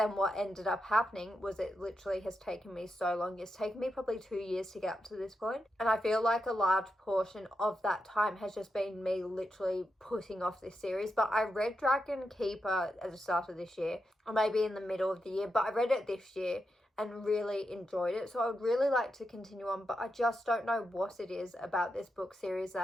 what ended up happening was it literally has taken me so long. It's taken me probably 2 years to get up to this point. And I feel like a large portion of that time has just been me literally putting off this series. But I read Dragon Keeper at the start of this year, or maybe in the middle of the year, but I read it this year and really enjoyed it. So I would really like to continue on, but I just don't know what it is about this book series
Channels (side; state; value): both; normal; correlation 0.86